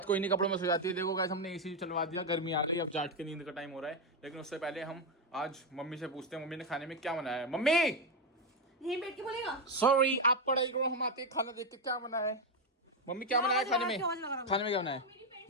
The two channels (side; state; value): both; normal; correlation 0.07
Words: को इन्हीं कपड़ों में सो जाती है। देखो गाइस, हमने एसी चलवा दिया, गर्मी आ गई, अब जाट के नींद का टाइम हो रहा है। लेकिन उससे पहले हम आज मम्मी से पूछते हैं मम्मी ने खाने में क्या बनाया है। मम्मी यहीं बैठ के बोलेगा। सॉरी, आप पढ़ाई करो, हम आते खाना देख के। क्या बनाया है मम्मी, क्या बनाया है खाने में? खाने में क्या बनाया है?